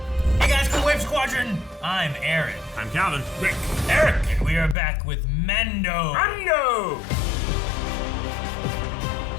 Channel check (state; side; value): drops out; right; at 4.8 s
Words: Hey guys, cool Wave Squadron! I'm Aaron. I'm Calvin. Rick. Eric. And we are back with Mando.